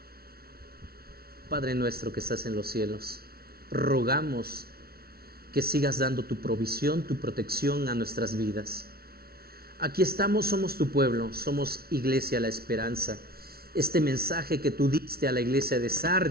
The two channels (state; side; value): late; left; 0.44 ms